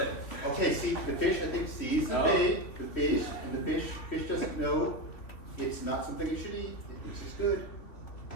Okay, see, the fish I think sees the Oh. bait, the fish, and the fish doesn't know it's not something it should eat. It thinks it's good.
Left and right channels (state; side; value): late; right; 3.3 ms